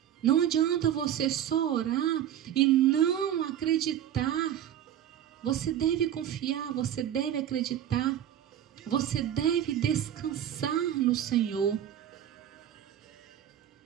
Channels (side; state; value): left; quieter; 10.5 dB